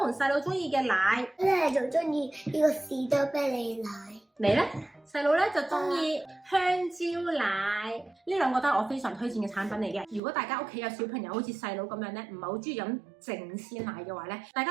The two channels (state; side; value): drops out; left; at 10.2 s